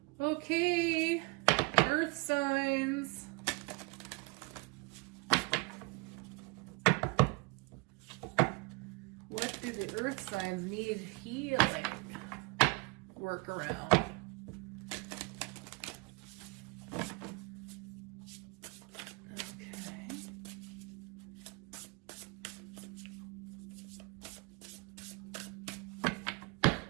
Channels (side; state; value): left; quieter; 27.8 dB